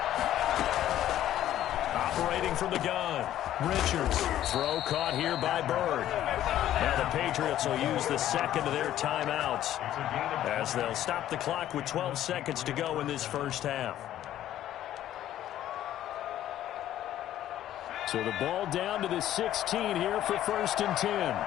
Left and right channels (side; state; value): right; quieter; 12.4 dB